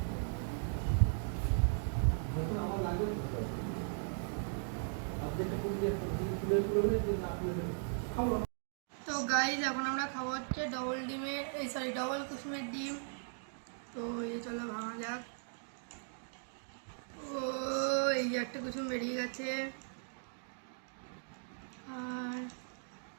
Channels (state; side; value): silent; left; digital silence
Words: তো গাইস এখন আমরা খাবো হচ্ছে ডবল ডিমের ডবল কুসুমের ডিম। তো এই চলো ভাঙা যাক। ও এই যে একটা কুসুম বেরিয়ে গেছে আর